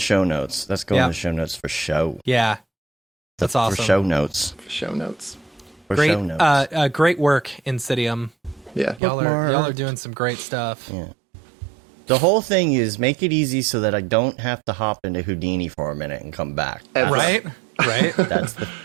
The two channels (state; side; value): drops out; left; at 9.0 s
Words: notes. That's going Yeah. in the show notes for show. Yeah. That's awesome. For show notes. For show notes. For Great, show notes. great work, Insidium. Yeah. Y'all are Bookmark. doing some great stuff. Yeah. The whole thing is make it easy so that I don't have to hop into Houdini for a minute and come back. Ever. Right? Right?